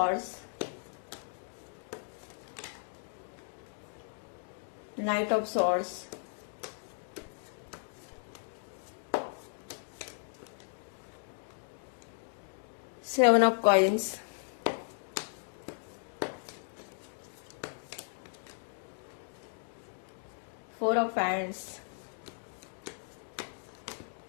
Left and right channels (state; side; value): silent; right; digital silence